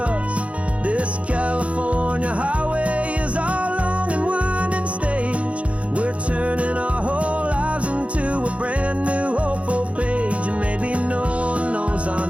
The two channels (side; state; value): left; late; 0.063 ms